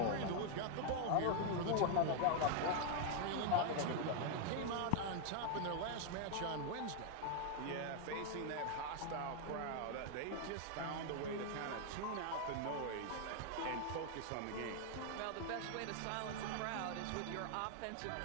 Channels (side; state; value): both; different; correlation 0.00